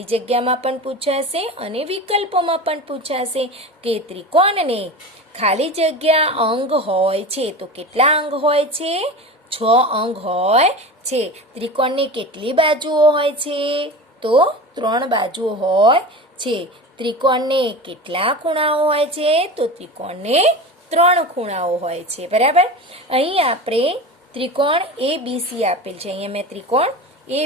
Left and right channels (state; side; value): normal; both; correlation 0.30